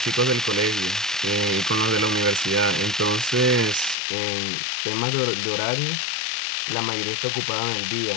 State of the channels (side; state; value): right; drops out; at 4.0 s